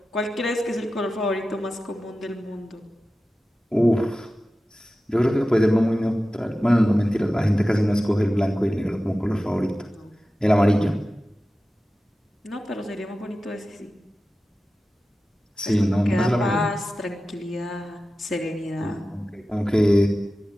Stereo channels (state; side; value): normal; both; correlation 0.95